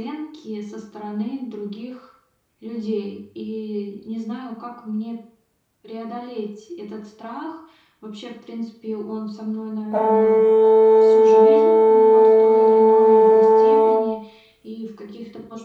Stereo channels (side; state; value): both; identical; correlation 1.00